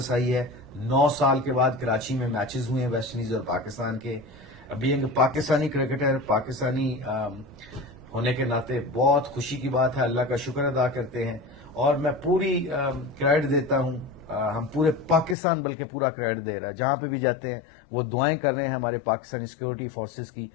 آئی ہے. 9 سال کے بعد کراچی میں میچز ہوئے ہیں ویسٹ انڈیز اور پاکستان کے. بینگ پاکستانی کرکٹر، پاکستانی ہونے کے ناطے بہت خوشی کی بات ہے. اللہ کا شکر ادا کرتے ہیں اور میں پوری کریڈٹ دیتا ہوں. ہم پورے پاکستان بلکہ پورا کریڈٹ دے رہا ہے. جہاں پہ بھی جاتے ہیں وہ دعائیں کر رہے ہیں ہمارے پاکستانی سیکورٹی فورسز کی،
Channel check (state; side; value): drops out; right; at 15.4 s